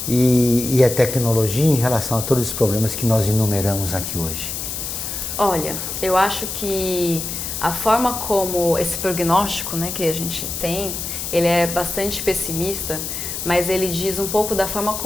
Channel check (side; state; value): left; noise; hiss, 5 dB below the sound